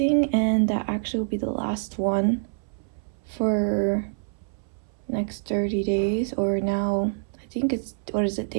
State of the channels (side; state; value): left; silent; 61 dB below the other